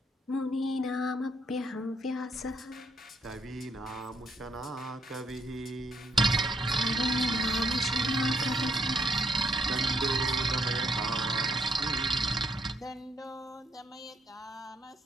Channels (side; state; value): both; normal; correlation 0.74